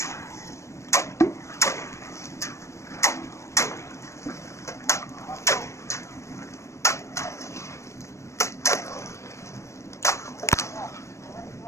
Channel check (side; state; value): right; late; 0.14 ms